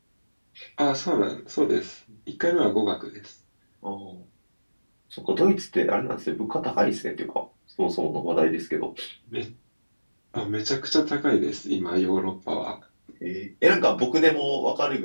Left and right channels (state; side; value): inverted; both; correlation -1.00